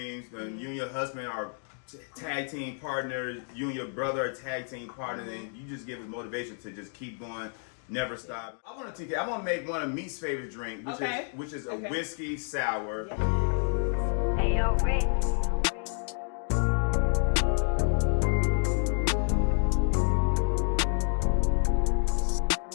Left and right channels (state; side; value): silent; right; 58 dB below the other